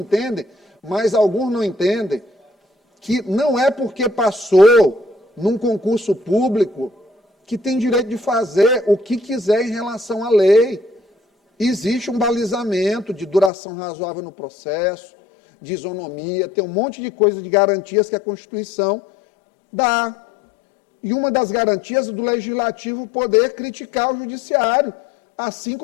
mas alguns não entendem, que não é porque passou num concurso público que tem direito de fazer o que quiser em relação à lei. Existe um balizamento de duração razoável no processo, de isonomia, tem um monte de coisas, de garantias que a Constituição dá. E uma das garantias é do Legislativo poder criticar o Judiciário. Assim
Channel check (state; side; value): drops out; right; at 13.5 s